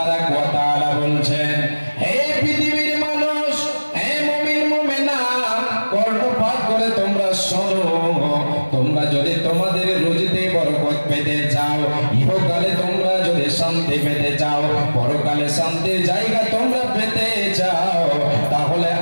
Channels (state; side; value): inverted; both; correlation -1.00